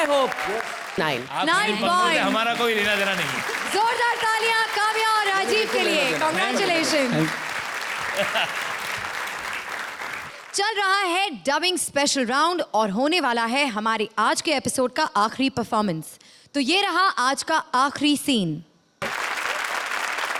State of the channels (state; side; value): identical; both; correlation 1.00